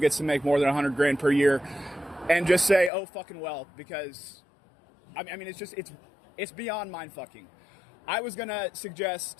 to make more than 100 grand per year and just say, oh, fucking well, because I mean, it's beyond mind-fucking. I was gonna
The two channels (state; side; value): drops out; right; at 2.9 s